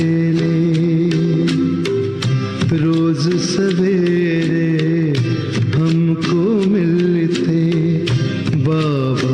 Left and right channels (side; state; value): both; identical; correlation 1.00